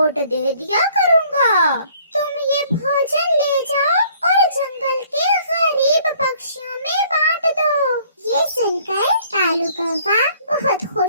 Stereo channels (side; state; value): both; inverted; correlation -0.59